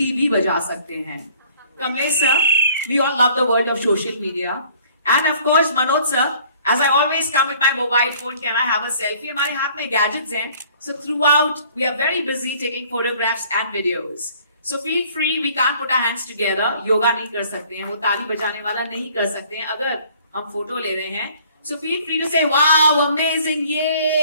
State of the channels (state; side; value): inverted; both; correlation -0.55